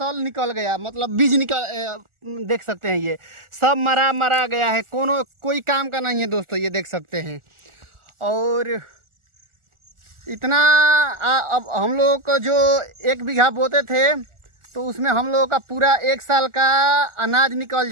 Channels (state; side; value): late; left; 1.4 ms